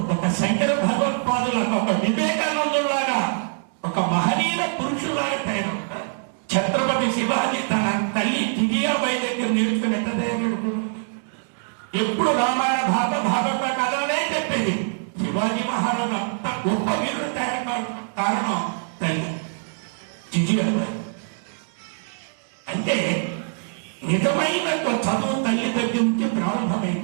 ఒక శంకర భగవత్పాదుల ఒక వివేకానందులాగా ఒక మహనీయ పురుషులాగా తయారవుతారు. ఛత్రపతి శివాజీ తన తల్లి జిజియాబాయి దగ్గర నేర్చుకున్నట్టు ఎప్పుడు రామాయణ భాగవత కథలే చెప్పేది. శివాజీ మహారాజు అంత గొప్ప వీరుడు తయారు కారణం తల్లి జిజియాబాయి. అంటే నిజమైన చదువు తల్లి దగ్గర నుంచి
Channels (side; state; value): left; silent; digital silence